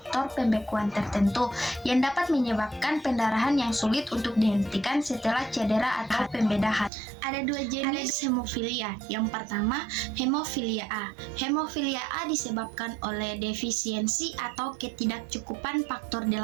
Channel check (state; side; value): drops out; left; at 6.9 s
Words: pembekuan tertentu yang dapat menyebabkan pendarahan yang sulit untuk dihentikan setelah cedera atau pembedahan. Ada dua jenis hemofilia. Yang pertama, hemofilia A. Hemofilia A disebabkan oleh defisiensi atau ketidakcukupan faktor